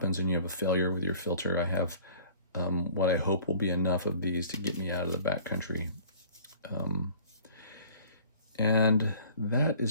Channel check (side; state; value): both; inverted; correlation -0.49